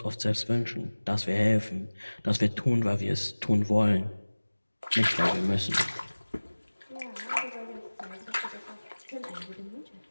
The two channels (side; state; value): both; inverted; correlation -1.00